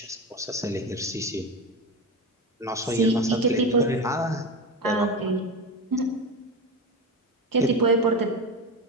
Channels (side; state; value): both; normal; correlation 0.22